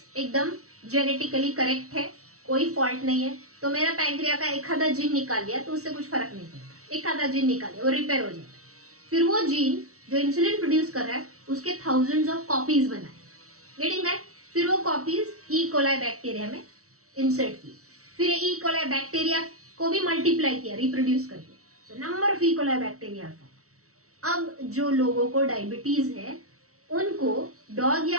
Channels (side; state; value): left; late; 0.64 ms